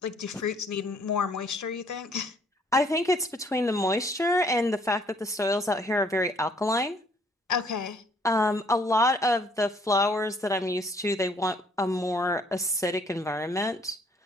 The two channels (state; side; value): normal; both; correlation 0.63